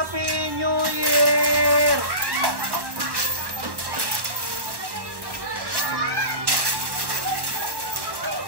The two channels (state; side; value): late; left; 1.1 ms